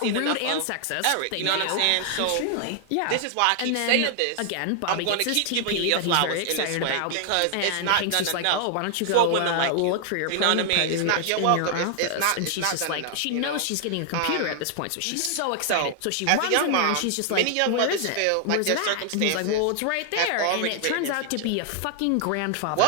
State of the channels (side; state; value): both; different; correlation 0.00